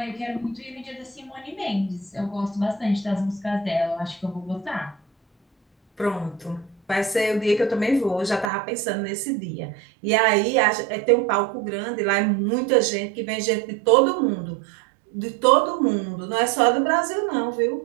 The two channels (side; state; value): left; drops out; at 8.5 s